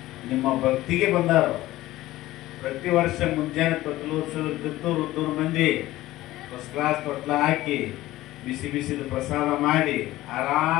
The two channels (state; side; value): quieter; right; 16.5 dB